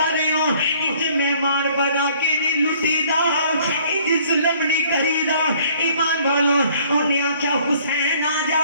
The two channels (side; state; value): both; inverted; correlation -0.58